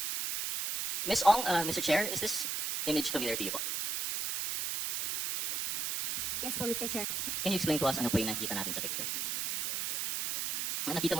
Ms. Ong, Mr. Chair, is this image familiar to you po? Yes po, Mr. Chair. Can you explain to us ano po yung nakita natin sa picture? Nakita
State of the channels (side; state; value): right; noise; hiss, 1 dB below the sound